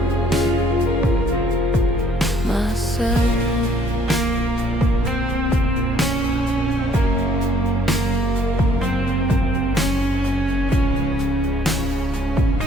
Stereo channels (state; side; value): normal; both; correlation 0.62